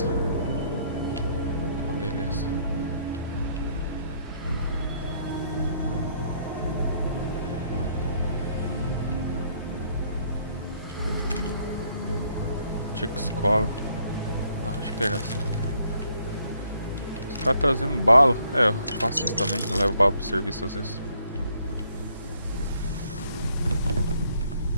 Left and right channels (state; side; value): inverted; both; correlation -0.68